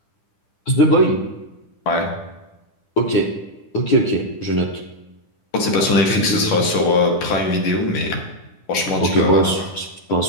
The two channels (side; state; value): right; late; 10 ms